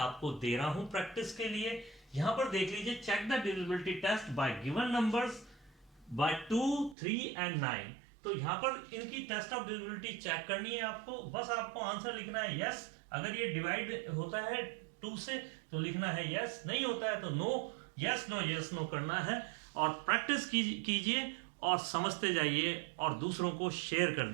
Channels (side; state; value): left; drops out; at 7.0 s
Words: दे रहा हूं प्रैक्टिस के लिए। यहां पर देख लीजिए, check the divisibility test by given numbers by 2, 3 and 9। तो यहाँ पर इनकी टेस्ट ऑफ डिविजिबिलिटी चेक करनी है आपको। बस आपको आंसर लिखना है यस, अगर ये डिवाइड होता है 2 से तो लिखना है यस, नहीं होता है तो नो, यस नो करना है। और प्रैक्टिस कीजिए और समझते जाइए और दूसरों को शेयर